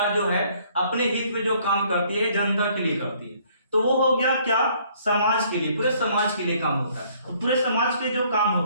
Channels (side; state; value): both; inverted; correlation -0.62